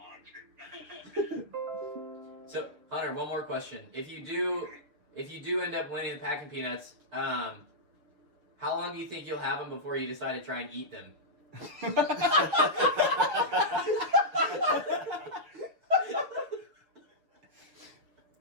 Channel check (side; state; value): left; late; 6.7 ms